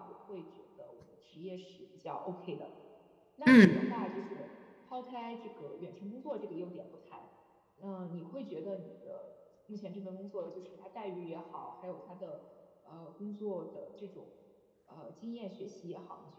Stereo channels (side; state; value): both; identical; correlation 1.00